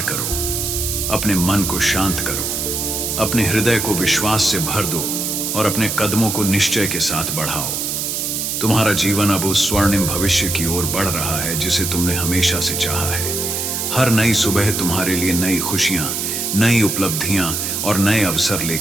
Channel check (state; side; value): noise; right; hiss, 2 dB below the sound